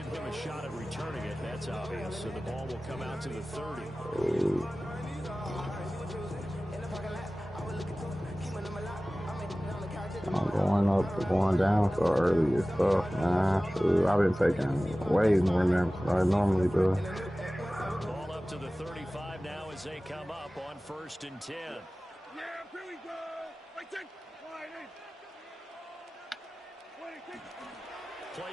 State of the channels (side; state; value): both; normal; correlation 0.97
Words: him a shot at returning it. That's obvious. So the ball will come out to the 30. I'm going down so early is tough, man. Shoot, I've been taking way more naps than I normally do. Ball up to the 35 now as they come up on 1st and 10. Yeah, here we go. Play